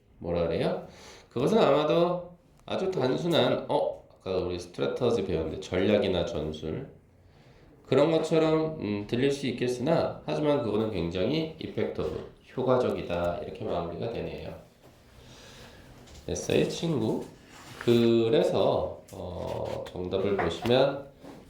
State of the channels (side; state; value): both; identical; correlation 1.00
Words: 뭐라 그래요? 그것은 아마도 아주 단순한 아까 우리 스트래터지 배웠는데 전략이나 전술 그런 것처럼 들릴 수 있겠으나 하지만 그거는 굉장히 이펙터브, 효과적이다 이렇게 마무리가 되네요. 됐어요, 친구? 그래서 정답을 보시면